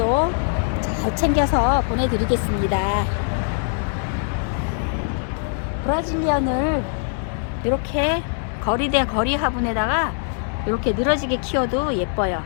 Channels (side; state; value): right; silent; 64 dB below the other